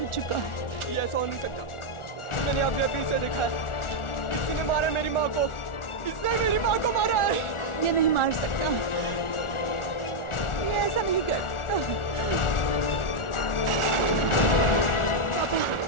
चुका है। ये ऐसा हो नहीं सकता। मैंने अभी अभी इसे देखा है। किसी ने मारा मेरी माँ को। इसने मेरी माँ को मारा है। ये नहीं मार सकता, ये ऐसा नहीं कर सकता।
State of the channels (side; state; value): right; late; 1.4 ms